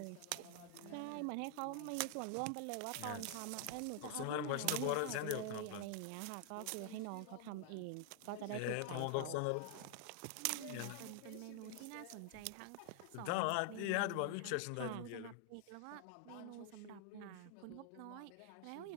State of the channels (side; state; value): both; different; correlation 0.00